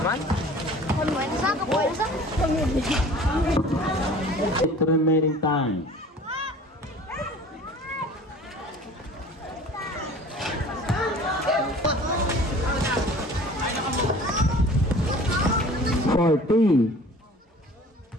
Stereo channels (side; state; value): both; normal; correlation 0.45